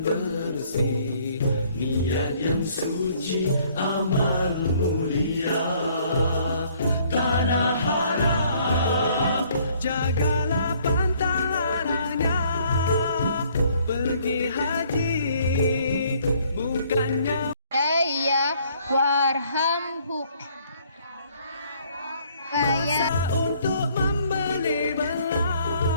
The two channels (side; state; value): both; inverted; correlation -0.62